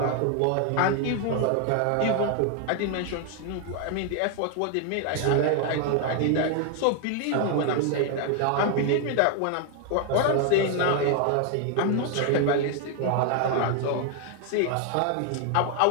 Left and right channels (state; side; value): different; both; correlation 0.01